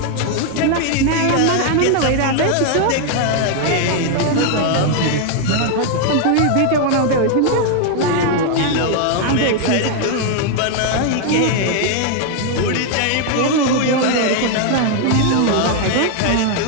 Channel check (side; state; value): both; different; correlation 0.00